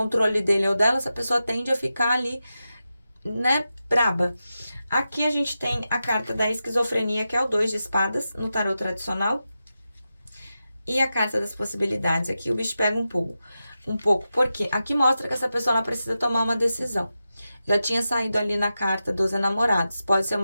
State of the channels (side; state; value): both; inverted; correlation -0.91